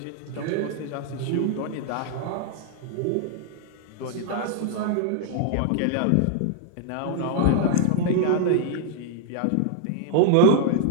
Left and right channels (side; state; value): both; different; correlation 0.00